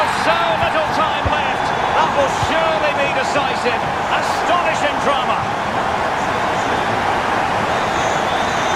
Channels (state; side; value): identical; both; correlation 1.00